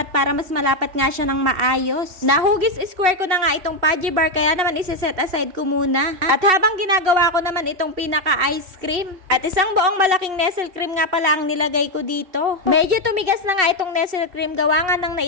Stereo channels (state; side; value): late; left; 2.7 ms